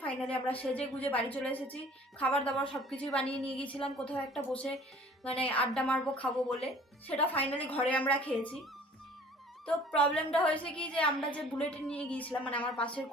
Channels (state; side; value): normal; both; correlation 0.50